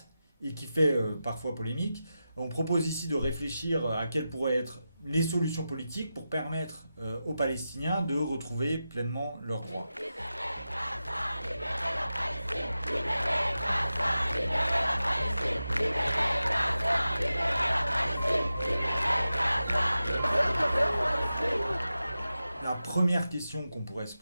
et qui fait parfois polémique, on propose ici de réfléchir à quelles pourraient être les solutions politiques pour permettre aux Palestiniens de retrouver pleinement leurs droits. La première question qu'on pourrait se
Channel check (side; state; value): both; inverted; correlation -0.92